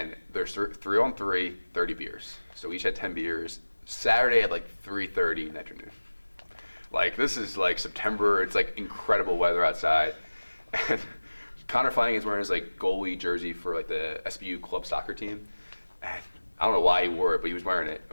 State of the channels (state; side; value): inverted; both; correlation -1.00